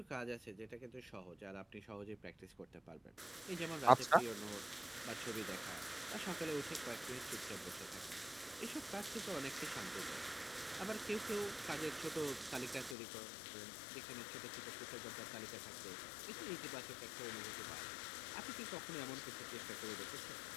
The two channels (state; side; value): drops out; right; at 13.0 s